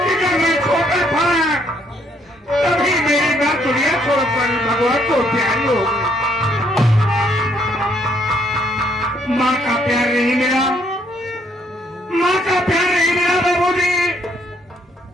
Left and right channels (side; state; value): both; normal; correlation 0.69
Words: जब मैं छोटा था तभी मेरी मां दुनिया छोड़कर भगवान को प्यारी हो गई। माँ का प्यार नहीं मिला, माँ का प्यार नहीं मिला बाबूजी।